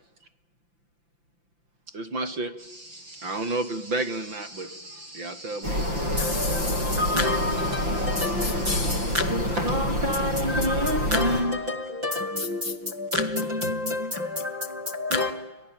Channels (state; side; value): late; left; 5.8 ms